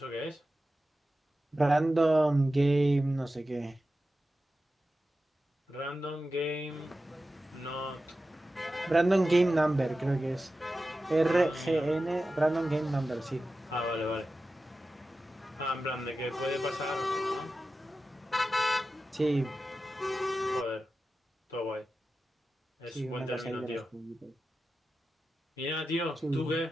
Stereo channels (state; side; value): normal; both; correlation 0.93